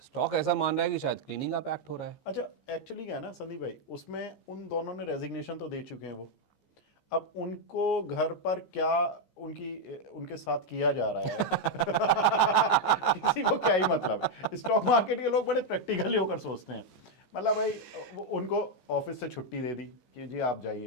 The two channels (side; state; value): right; late; 15 ms